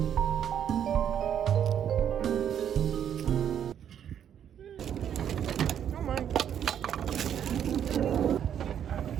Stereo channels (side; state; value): left; quieter; 9.3 dB